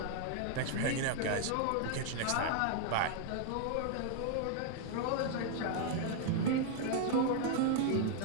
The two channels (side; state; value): both; different; correlation 0.00